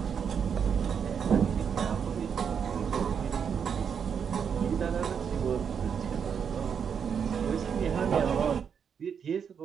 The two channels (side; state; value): left; quieter; 7.2 dB